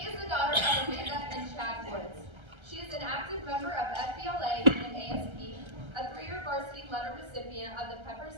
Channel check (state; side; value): late; left; 1.3 ms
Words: is the daughter of Amanda and Chad Woods. She is an active member of FBLA and ASP, a 3-year varsity letter recipient of the Peppers